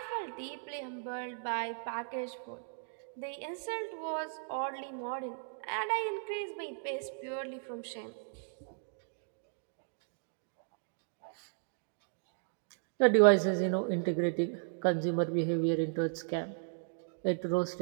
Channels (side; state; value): left; silent; digital silence